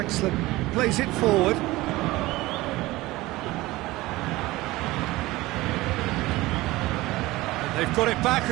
plays it forward. And they've got it back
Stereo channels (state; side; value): quieter; left; 19.2 dB